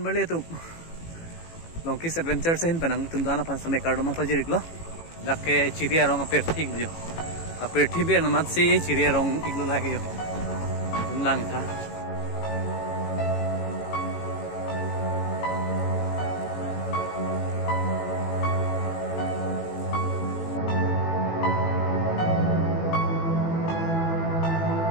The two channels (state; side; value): late; right; 18 ms